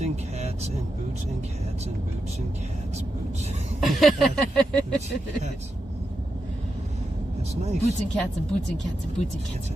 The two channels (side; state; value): both; normal; correlation 0.87